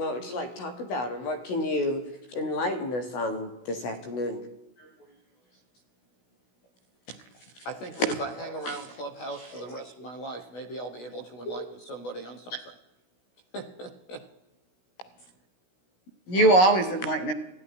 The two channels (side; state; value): right; late; 16 ms